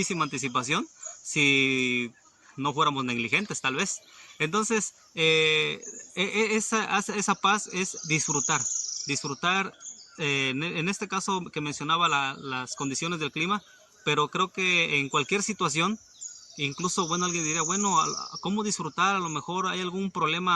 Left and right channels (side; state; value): both; identical; correlation 1.00